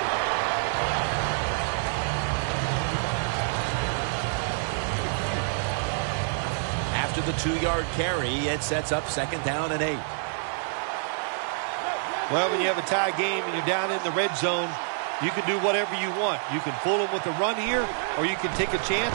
After the 2-yard carry, it sets up 2nd down and 8. Well, when you have a tie game and you're down in the red zone, you can do whatever you want. You can fool them with a run here, or you can take a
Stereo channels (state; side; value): silent; left; 59 dB below the other